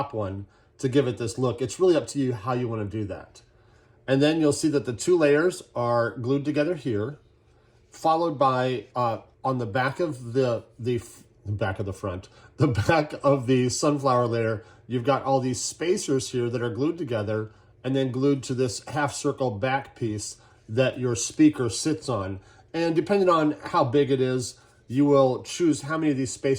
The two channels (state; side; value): identical; both; correlation 1.00